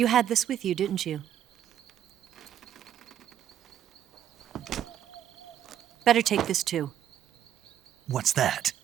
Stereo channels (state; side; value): quieter; left; 10.6 dB